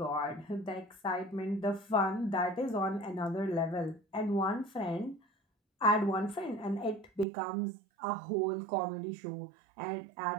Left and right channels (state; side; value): drops out; left; at 7.2 s